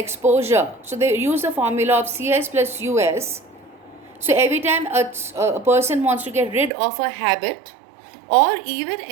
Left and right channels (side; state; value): left; drops out; at 6.7 s